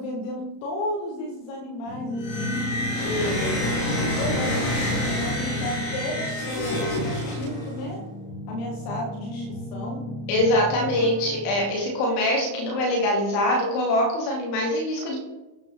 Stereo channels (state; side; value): late; right; 35 ms